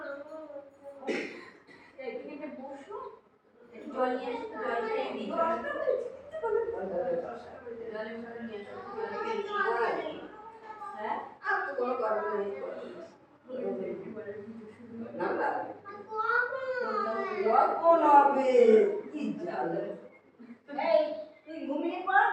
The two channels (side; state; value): both; identical; correlation 1.00